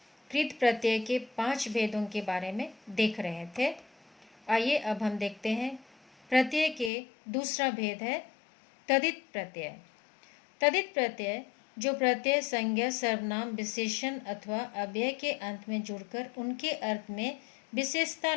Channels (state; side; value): drops out; right; at 6.9 s